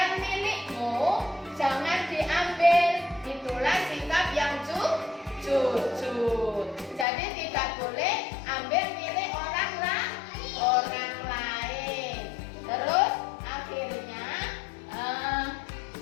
milikmu, jangan diambil. Itulah sikap yang jujur. Jadi tidak boleh ambil milik orang lain. Terus akhirnya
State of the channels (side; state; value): right; drops out; at 7.1 s